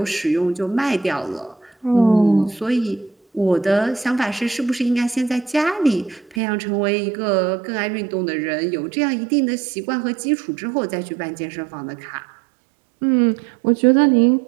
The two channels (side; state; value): left; drops out; at 6.4 s